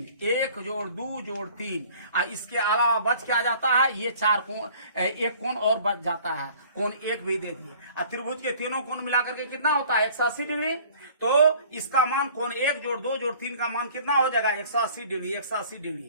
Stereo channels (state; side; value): inverted; both; correlation -0.51